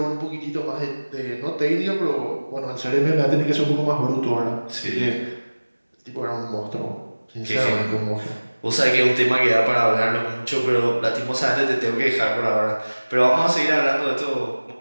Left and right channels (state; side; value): inverted; both; correlation -1.00